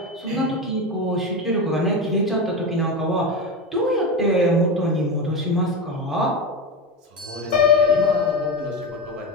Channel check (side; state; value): both; normal; correlation 0.18